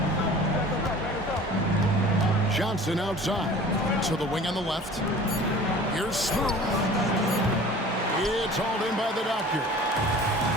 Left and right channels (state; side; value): normal; both; correlation 0.44